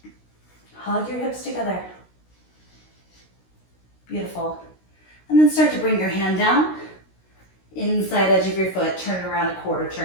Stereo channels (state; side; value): late; right; 16 ms